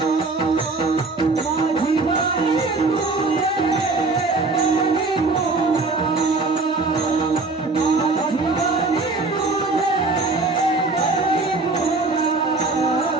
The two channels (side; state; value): left; quieter; 3.6 dB